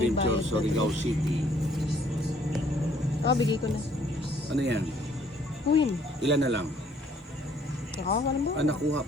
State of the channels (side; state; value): both; normal; correlation 0.62